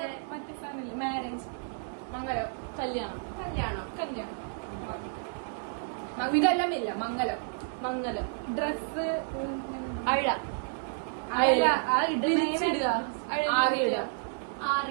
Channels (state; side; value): silent; left; digital silence